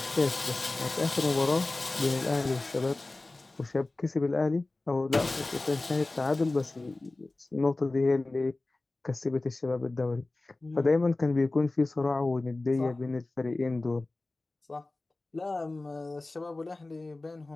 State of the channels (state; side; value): quieter; right; 3.1 dB